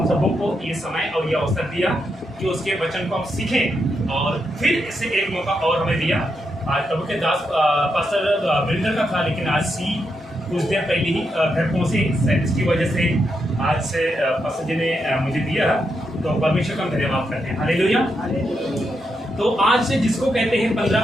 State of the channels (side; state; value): both; normal; correlation 0.82